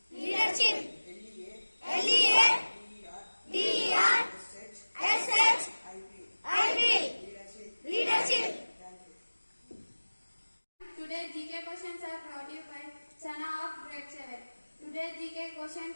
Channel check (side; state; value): both; inverted; correlation -1.00